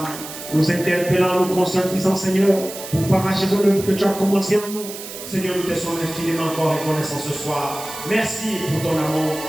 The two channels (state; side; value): noise; right; hiss, 11 dB below the sound